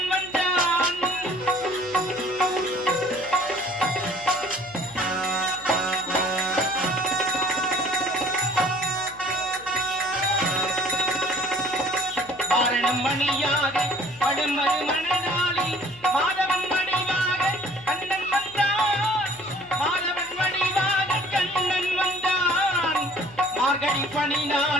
வந்தான் வாரணம் மணியாக படுமறு மணநாளில் மாதவன் வடிவாக கண்ணன் வந்தான் மாதவன் வடிவாக கண்ணன் வந்தான் மார்கழி பனி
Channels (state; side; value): noise; left; hum, 23 dB below the sound